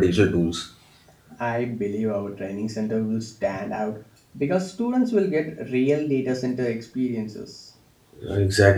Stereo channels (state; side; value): identical; both; correlation 1.00